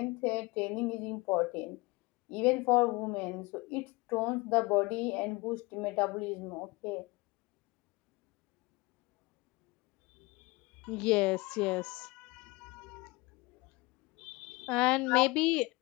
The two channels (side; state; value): right; quieter; 24.0 dB